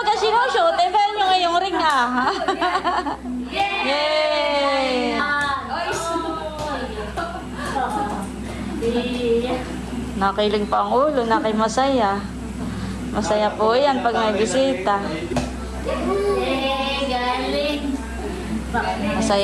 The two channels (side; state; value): both; identical; correlation 1.00